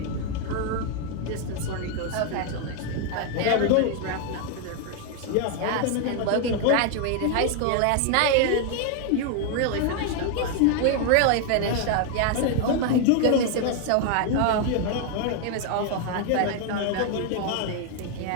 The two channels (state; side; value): different; both; correlation 0.01